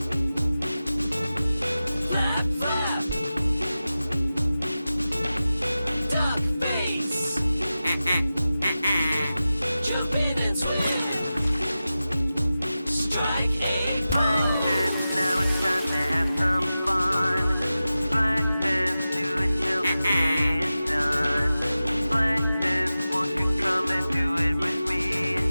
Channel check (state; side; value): inverted; both; correlation -0.94